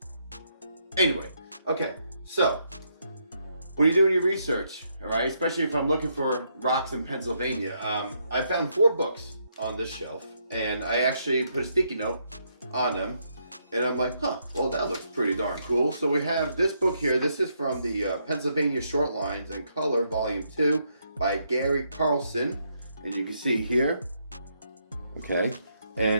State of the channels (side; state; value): both; inverted; correlation -0.76